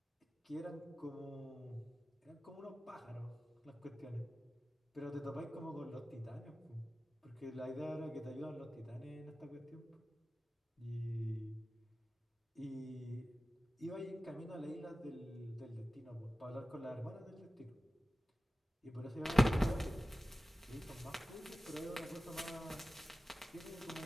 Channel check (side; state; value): both; normal; correlation 0.96